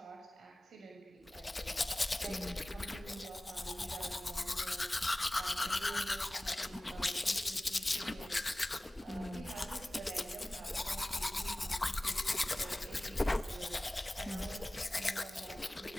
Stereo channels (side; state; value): both; normal; correlation 0.98